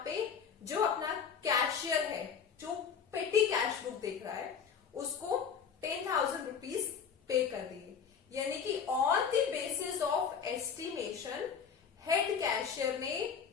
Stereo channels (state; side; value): quieter; right; 6.8 dB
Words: पे जो अपना कैशियर है जो पेटी कैश बुक देख रहा है उसको 10,000 रुपीज पे कर दिए। यानी कि on the basis of estimation head cashier ने